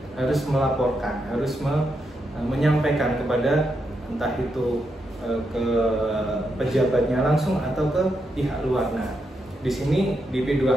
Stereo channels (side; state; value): both; normal; correlation 0.83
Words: harus melaporkan, harus menyampaikan kepada entah itu ke pejabatnya langsung atau ke pihak luar. Nah, di sini di